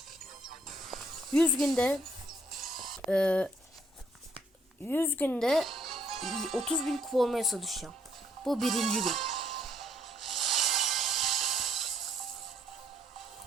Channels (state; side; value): normal; both; correlation 0.69